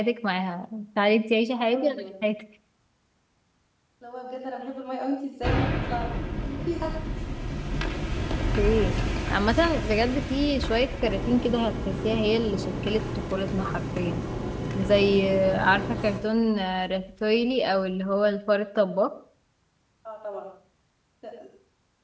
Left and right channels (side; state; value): both; identical; correlation 1.00